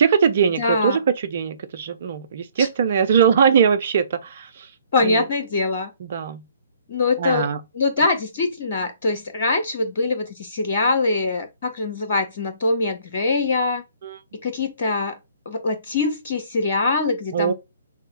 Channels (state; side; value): inverted; both; correlation -0.60